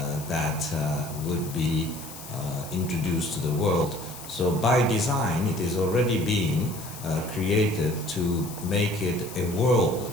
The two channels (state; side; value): noise; left; hiss, 14 dB below the sound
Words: that would be introduced to the world. So by design, it is already been created to make it a